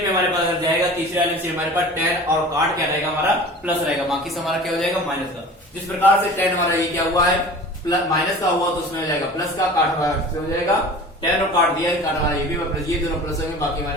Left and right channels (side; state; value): both; normal; correlation 0.40